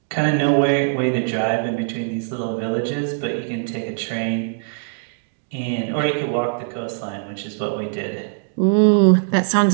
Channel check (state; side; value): silent; left; digital silence